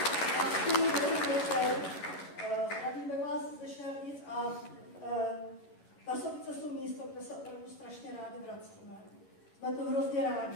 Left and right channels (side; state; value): right; late; 11 ms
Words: Zdravíme vás ze Šardic a Tasovice jsou místo, kde se opravdu strašně rádi vracíme. Jsme to hrozně